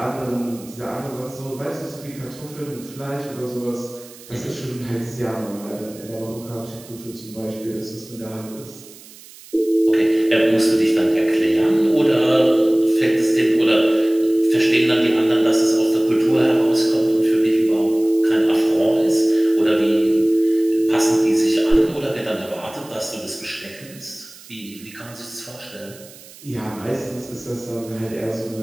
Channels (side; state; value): right; noise; hiss, 20 dB below the sound